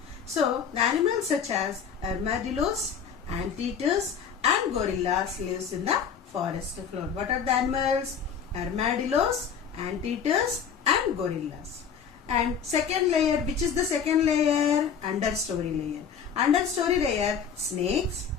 So, the animals such as armadillos, anteaters, and gorillas lives in the forest floor. What are the animals? Armadillos, anteaters, and gorillas. And second layer, which is the second layer? Understory layer. Understory layer, snakes,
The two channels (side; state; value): right; quieter; 7.1 dB